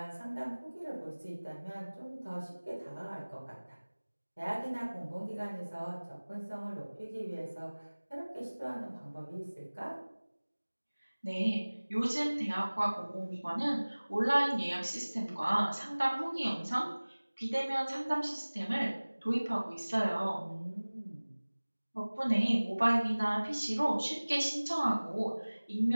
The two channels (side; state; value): both; inverted; correlation -1.00